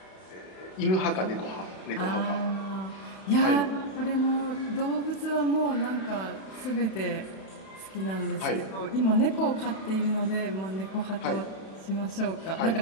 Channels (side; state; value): right; late; 31 ms